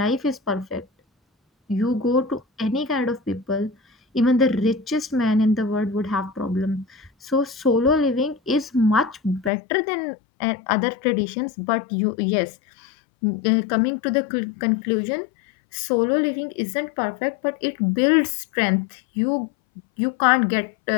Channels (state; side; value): drops out; right; at 9.5 s